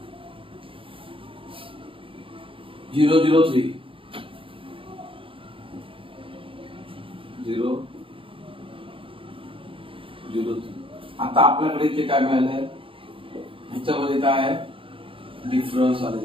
003 003. आता आपल्याकडे इथे काय मिळालंय, ह्याच्यामध्ये काय आहे डिफरन्स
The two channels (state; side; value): late; left; 0.26 ms